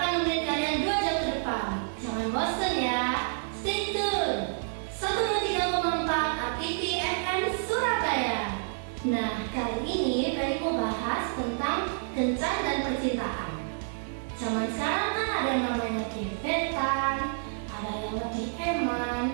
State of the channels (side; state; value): left; silent; digital silence